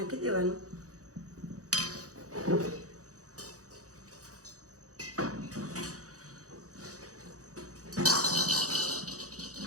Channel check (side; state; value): left; late; 0.66 ms